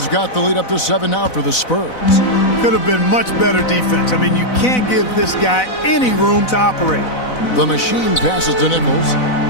got the lead up to 7 now for the Spurs. Could have been much better defense. I mean, you can't give this guy any room to operate. The Machine passes to Nichols.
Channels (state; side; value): late; right; 4.0 ms